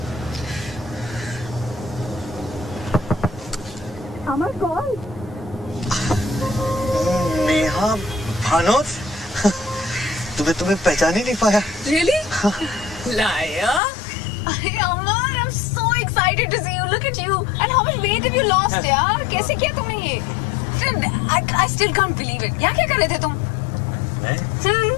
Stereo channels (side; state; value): right; drops out; at 13.8 s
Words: अमर कौन? नेहा भानोद, तुम्हें पहचान ही नहीं पाया। Really? Liar? अरे अमर, I'm so excited to see you. Look at you. And how much weight have you lost, यार? कैसे किया तुमने ये? I still can't believe it. यहाँ क्या कर रहे थे तुम?